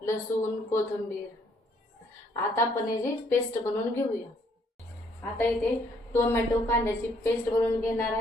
लसूण, कोथिंबीर। आता आपण याची पेस्ट बनवून घेऊया। आता इथे टोमॅटो कांद्याची पेस्ट बनवून घेणार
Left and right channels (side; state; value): both; normal; correlation 0.67